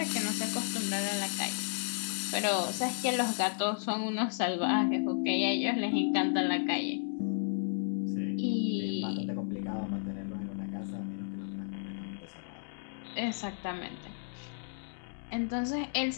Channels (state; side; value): silent; right; digital silence